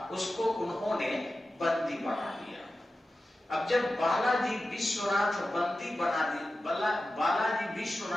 उसको उन्होंने बंदी बना दिया। अब जब बालाजी विश्वनाथ बंदी बना दी, बालाजी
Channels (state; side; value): normal; both; correlation 0.93